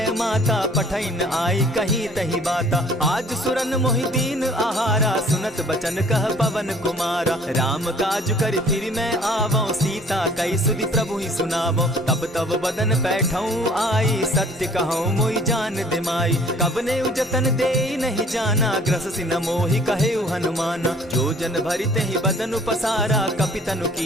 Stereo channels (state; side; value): normal; both; correlation 0.54